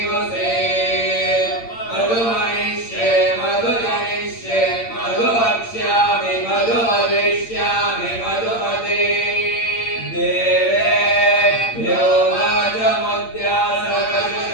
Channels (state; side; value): late; right; 8.7 ms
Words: मधुमनिष्ये मधुजनिष्ये मधुवक्ष्यामि मधुवदिष्यामि मधुमते देवेभ्यो वाचमुद्या